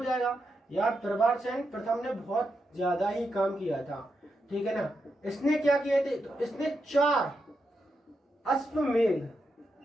यार, प्रभारसेन प्रथम ने बहुत ज्यादा ही काम किया था, ठीक है ना। इसने क्या किए थे, तो इसने 4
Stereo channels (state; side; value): normal; both; correlation 0.85